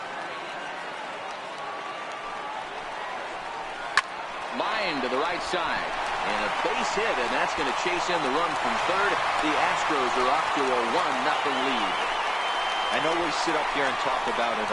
Line to the right side. And a base hit, and that's going to chase in the run from third. The Astros are off to a 1-0 lead. I know we sit up here and talk about it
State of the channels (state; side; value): identical; both; correlation 1.00